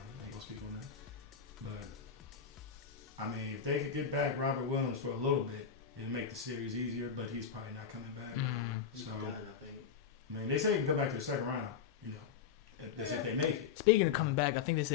I ain't gonna speak on that. But I mean, if they could get back Robert Williams for a little bit, it'd make the series easier. But he's probably not coming back. Nah, he's So- done. I think. I mean, they say he can come back to the second round. You know, that's if they make it. Speaking of coming back, I think they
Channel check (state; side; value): quieter; right; 7.0 dB